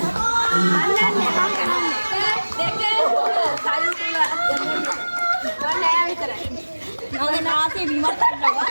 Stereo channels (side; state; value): both; inverted; correlation -1.00